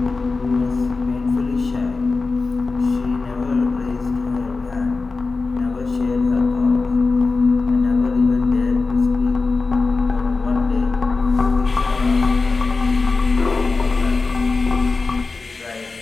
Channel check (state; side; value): quieter; right; 4.0 dB